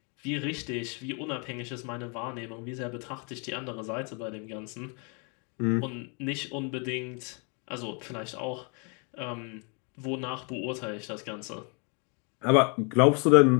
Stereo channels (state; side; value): quieter; right; 35.5 dB